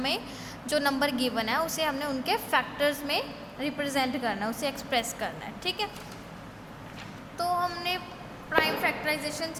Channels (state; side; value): identical; both; correlation 1.00